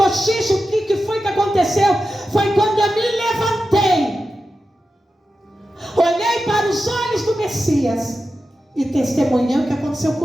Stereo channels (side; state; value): both; normal; correlation 0.91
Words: O que foi que aconteceu? Foi quando eu me levantei, olhei para os olhos do Messias e testemunhei o que aconteceu